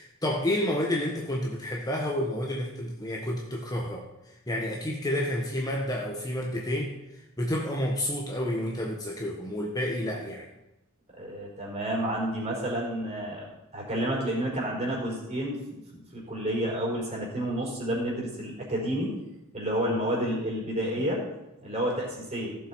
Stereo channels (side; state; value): both; normal; correlation 0.46